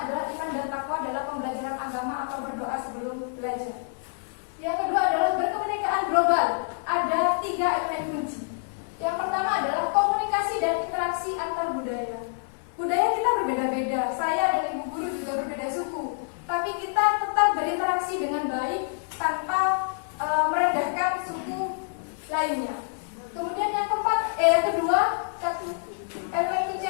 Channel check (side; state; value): right; silent; 60 dB below the other